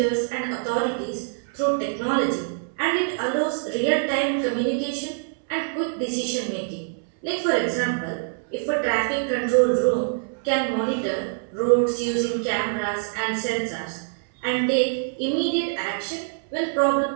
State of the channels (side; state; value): left; silent; 62 dB below the other